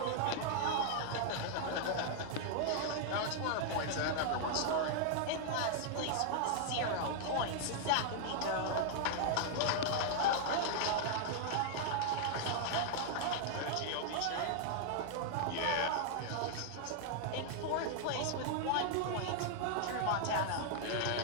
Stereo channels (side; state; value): both; different; correlation -0.01